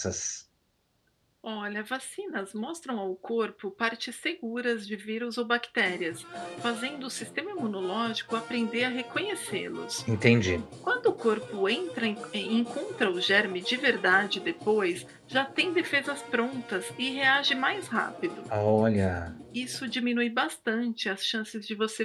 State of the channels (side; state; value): both; identical; correlation 1.00